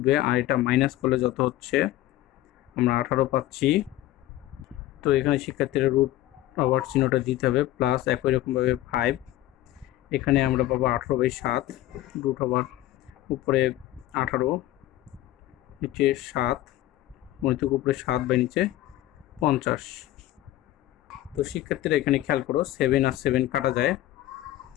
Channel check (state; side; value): quieter; right; 15.0 dB